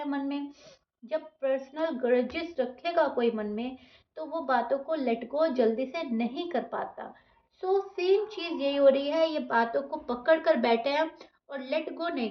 मन में। जब पर्सनल ग्रजेस रखेगा कोई मन में तो वो बातों को लेट गो जल्दी से नहीं कर पाता। सो सेम चीज़ यही हो रही है, ये बातों को पकड़ कर बैठे हैं और लेट गो नहीं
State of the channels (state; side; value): identical; both; correlation 1.00